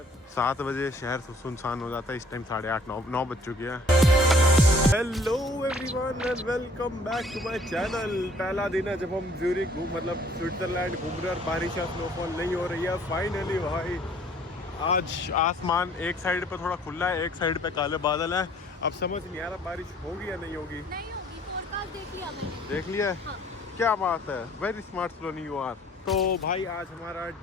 7 बजे शहर सुनसान हो जाता है, इस टाइम 8:30-9 बज चुकी है। Hello everyone and welcome back to my channel. पहला दिन है जब हम ज्यूरिक मतलब स्विट्जरलैंड घूम रहे और बारिश या स्नोफॉल नहीं हो रही है। फाइनली भाई आज आसमान एक साइड पे थोड़ा खुला है, एक साइड पे काले बादल है। अब समझ नहीं आ रहा बारिश होगी या नहीं होगी। नहीं होगी, फोरकास्ट देख लिया मैंने। देख लिया? हाँ। क्या बात है, very smart Soni you are. तो भाई आज हमारा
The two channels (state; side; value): normal; both; correlation 0.57